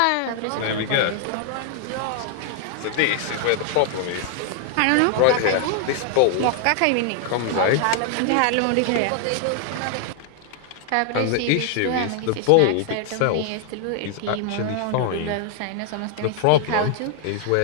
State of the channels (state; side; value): different; both; correlation 0.00